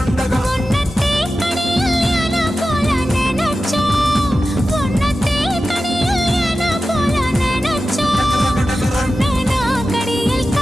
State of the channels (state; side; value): normal; both; correlation 0.93